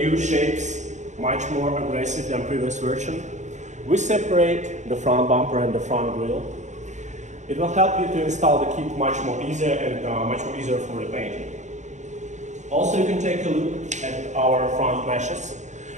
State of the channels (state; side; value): late; left; 0.34 ms